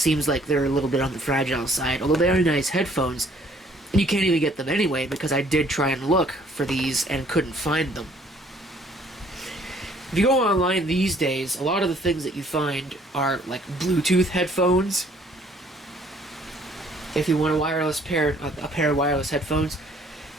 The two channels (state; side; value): normal; both; correlation 0.60